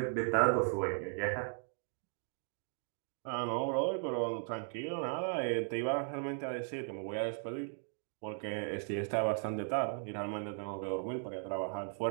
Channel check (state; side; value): silent; left; 53 dB below the other